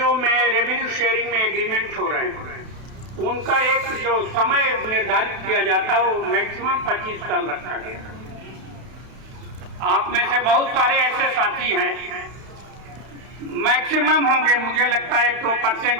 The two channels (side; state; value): left; late; 32 ms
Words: में रेवेन्यू शेयरिंग में एग्रीमेंट हो रहे हैं, उनका एक जो समय निर्धारित किया जाता है वो मैक्सिमम 25 साल रखा गया। आप में से बहुत सारे ऐसे साथी हैं, मैक्सिमम होंगे, मुझे लगता है